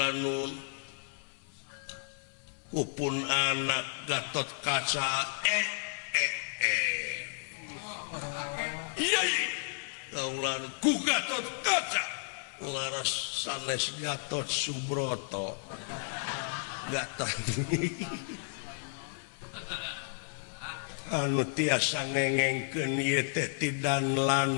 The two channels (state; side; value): silent; right; 56 dB below the other